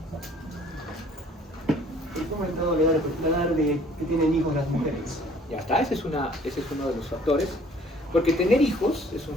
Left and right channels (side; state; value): both; normal; correlation 0.55